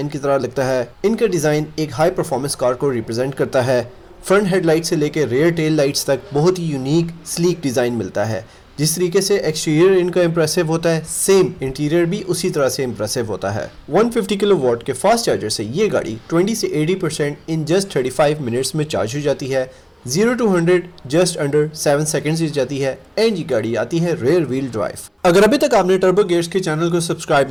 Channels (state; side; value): identical; both; correlation 1.00